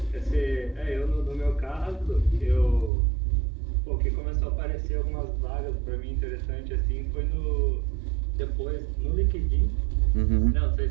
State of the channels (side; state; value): left; drops out; at 2.9 s